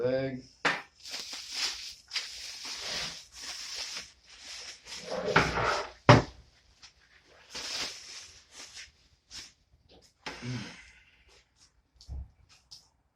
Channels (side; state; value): both; identical; correlation 1.00